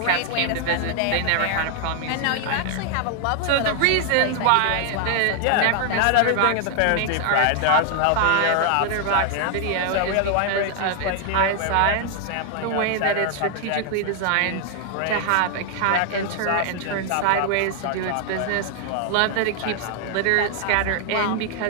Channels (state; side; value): different; both; correlation 0.00